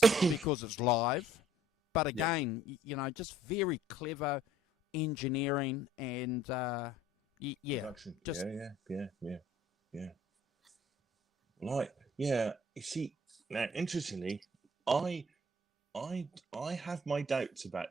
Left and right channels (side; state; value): both; normal; correlation 0.57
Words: because it's live. But again, just very clever engineering and Production. Just yeah. Like, you see, now interestingly, I have my doubts